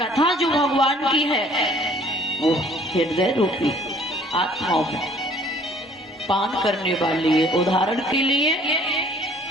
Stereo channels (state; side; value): normal; both; correlation 0.56